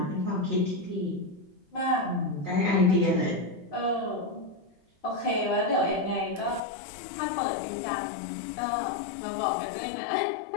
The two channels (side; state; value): right; drops out; at 6.6 s